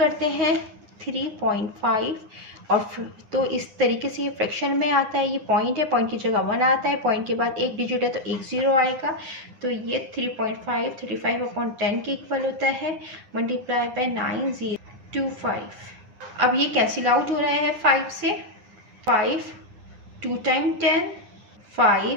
हैं 3.5 और तो इस तरीके से ये फ्रैक्शन में आता है। ये पॉइंट है, पॉइंट की जगह 1 आता है, पॉइंट के बाद एक डिजिट है तो 1 ज़ीरो आएगा। तो ये 3.5 35/10 के इक्वल होता है मल्टीप्लाई बाय 9025। अब ये कैंसिल आउट हो रहा है 5 से। 5 2 टाइम 10,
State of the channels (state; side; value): late; left; 9.8 ms